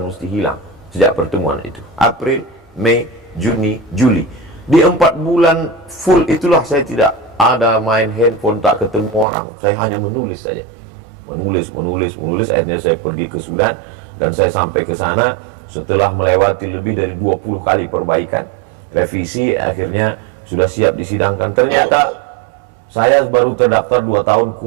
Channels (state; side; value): drops out; left; at 9.2 s